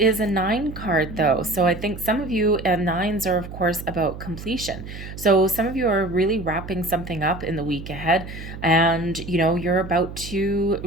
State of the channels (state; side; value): noise; right; hum, 11 dB below the sound